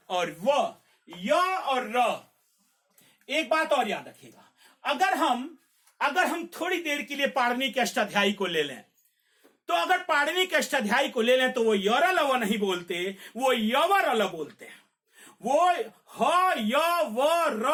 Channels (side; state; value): both; identical; correlation 1.00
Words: और व। य और र। एक बात और याद रखिएगा, अगर हम थोड़ी देर के लिए पाणिनि के अष्टाध्यायी को ले लें, तो अगर पाणिनि के अष्टाध्यायी को ले लें तो वो यर लव नहीं बोलते, वो यवर ल बोलते हैं। वो ह य व